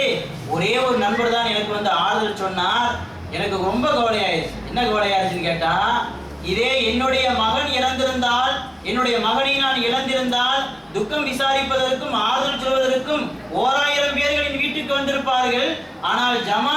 ஒரே ஒரு நண்பர் தான் எனக்கு வந்து ஆறுதல் சொன்னார். எனக்கு ரொம்ப கவலையாயிருச்சு. என்ன கவலையாயிருச்சுன்னு கேட்டா, இதே என்னுடைய மகன் இறந்திருந்தால், என்னுடைய மகனை நான் இழந்திருந்தால் துக்கம் விசாரிப்பதற்கும் ஆறுதல் சொல்வதற்கும் 1000 பேர்களின் வீட்டுக்கு வந்திருப்பார்கள். ஆனால்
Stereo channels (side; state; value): both; identical; correlation 1.00